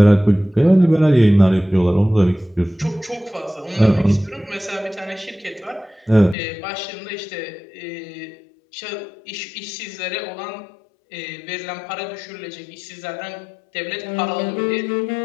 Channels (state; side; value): drops out; right; at 6.4 s